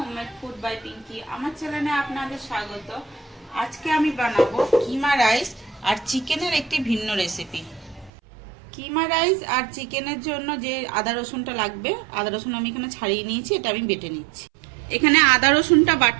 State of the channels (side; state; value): left; drops out; at 8.1 s